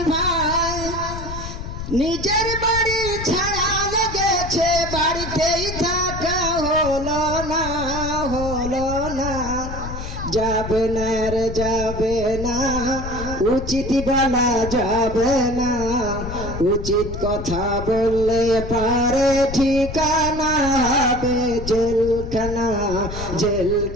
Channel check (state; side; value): noise; left; rumble, 8 dB below the sound